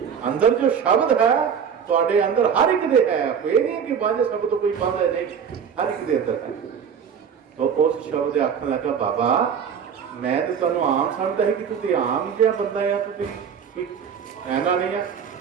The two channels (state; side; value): quieter; left; 7.4 dB